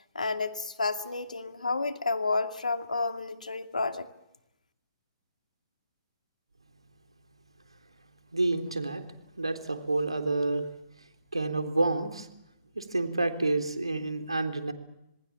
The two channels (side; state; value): both; inverted; correlation -0.83